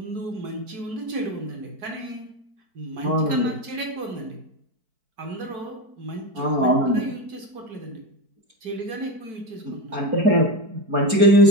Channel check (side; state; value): left; late; 4.5 ms